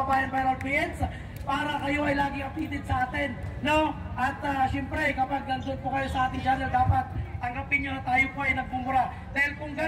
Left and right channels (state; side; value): identical; both; correlation 1.00